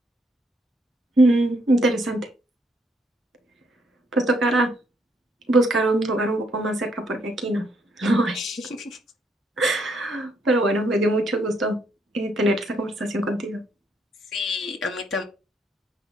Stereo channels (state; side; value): normal; both; correlation 0.73